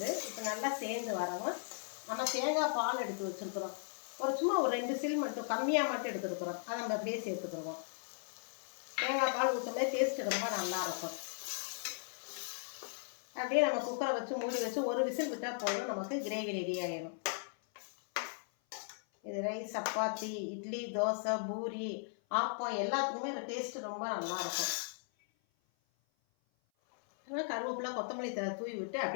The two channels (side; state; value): right; silent; 53 dB below the other